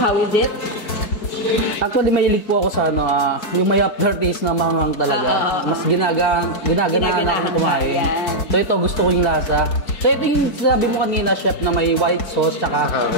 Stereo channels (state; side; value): late; right; 4.6 ms